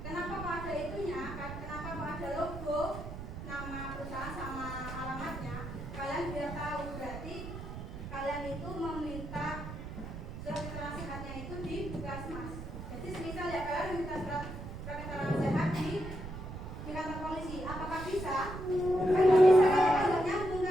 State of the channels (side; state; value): right; noise; rumble, 9 dB below the sound